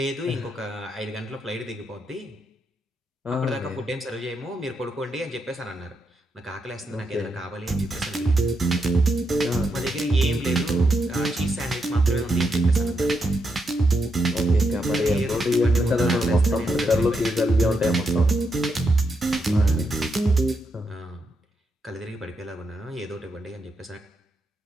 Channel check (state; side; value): normal; both; correlation 0.82